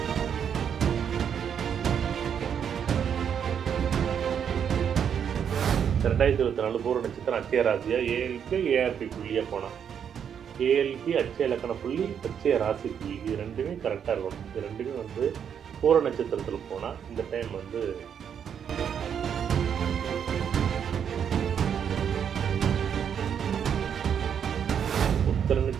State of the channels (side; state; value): left; quieter; 8.0 dB